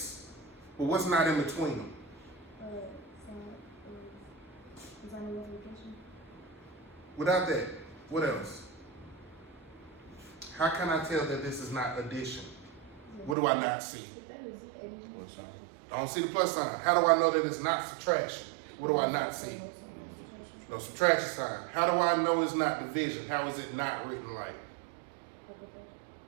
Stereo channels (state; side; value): drops out; left; at 13.4 s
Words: But what's not in between them? Without that, what else? How can I tell that this is not addition? What do I not see? I don't see the plus sign. How do I know that it's not subtraction? What do I not see? No subtraction sign. How do I know it's not division? How is it not written like